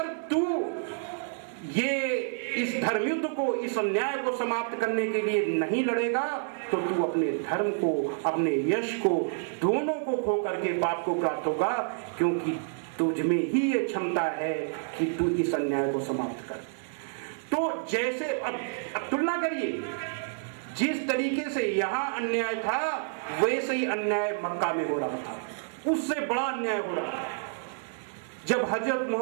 तू ये इस धर्मयुद्ध को, इस अन्याय को समाप्त करने के लिए नहीं लड़ेगा तो तू अपने धर्म को, अपने यश को, दोनों को खो करके पाप को प्राप्त होगा, क्योंकि तुझ में ही ये क्षमता है कि तू इस अन्याय को समाप्त कर। तो जैसे अब तुलना करिए, जिस तरीके से यहां अन्याय था वैसे ही अन्याय मक्का में हो रहा था, उससे बड़ा अन्याय हो रहा था। जब हजरत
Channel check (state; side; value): silent; left; digital silence